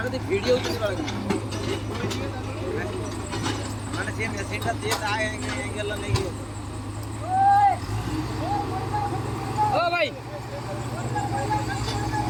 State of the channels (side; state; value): both; identical; correlation 1.00